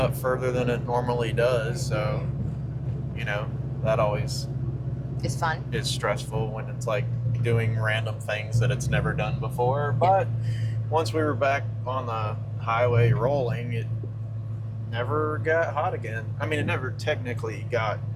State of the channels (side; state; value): both; identical; correlation 1.00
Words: further than it normally does. So, that always It's fun. is stressful when it's like doing random things that it's never done before. But once we were back on the highway rolling, it never got hot again. I mean, it never technically got